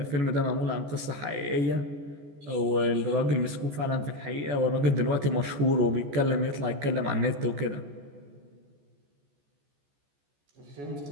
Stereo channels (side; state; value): left; late; 14 ms